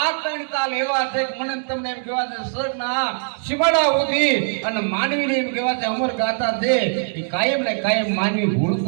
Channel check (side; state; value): left; silent; digital silence